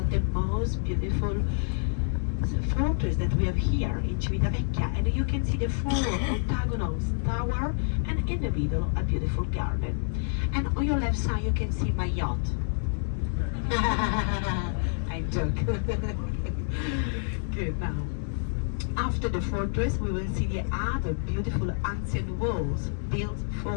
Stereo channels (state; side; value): silent; right; digital silence